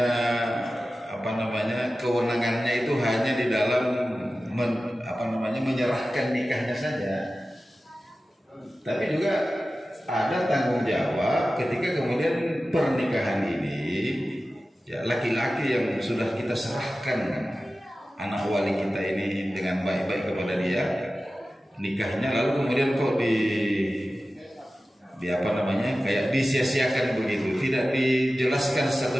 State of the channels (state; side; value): normal; both; correlation 0.95